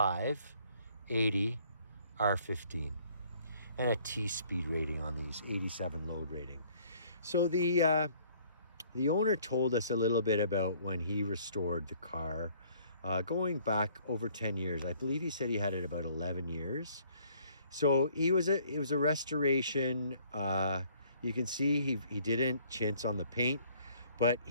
R15, and a T speed rating on these, 87 load rating. So the owner told us a little bit about when he restored the car, going back over 10 years. I believe he said he had it about 11 years. So it was a restoration. You can see he didn't chintz on the paint, but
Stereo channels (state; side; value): inverted; both; correlation -0.60